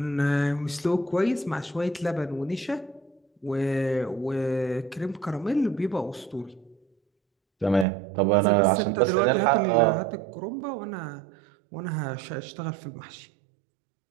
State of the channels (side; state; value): left; drops out; at 7.9 s